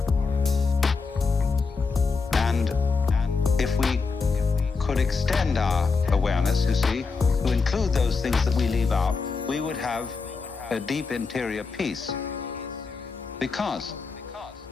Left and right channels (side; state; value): right; quieter; 4.6 dB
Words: And if we could extend our awareness, you see, to include those things that we leave out, we would have a deep interior peace. Because